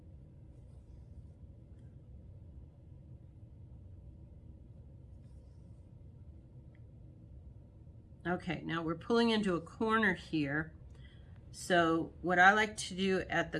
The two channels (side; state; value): both; identical; correlation 1.00